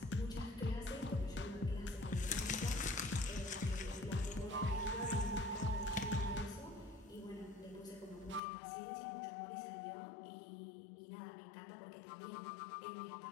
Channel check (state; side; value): drops out; right; at 8.4 s